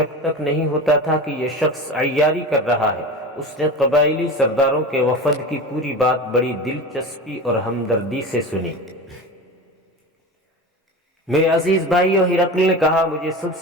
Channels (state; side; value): normal; both; correlation 0.29